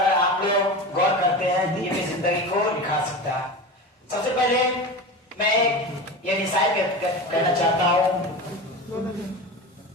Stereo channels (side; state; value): both; normal; correlation 0.27